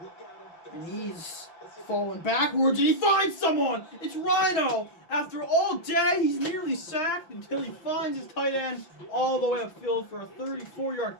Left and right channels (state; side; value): late; right; 5.9 ms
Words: And he's falling backwards, and he finds someone! It's Rhino! After all day, he's nearly sacked until he finds his tight end all the way upfield for a 34-yard